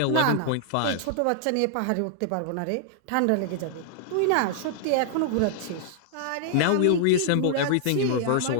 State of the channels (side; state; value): both; different; correlation -0.01